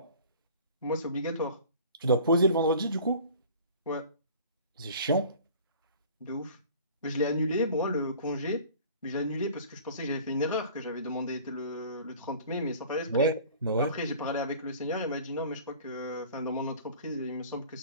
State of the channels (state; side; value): inverted; both; correlation -0.45